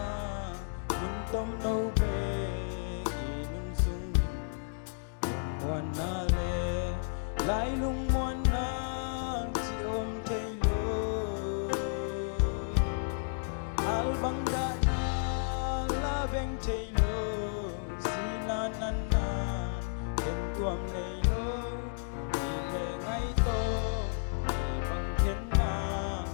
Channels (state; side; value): silent; right; digital silence